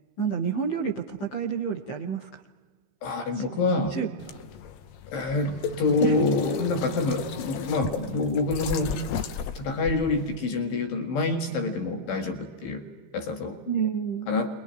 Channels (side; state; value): right; late; 15 ms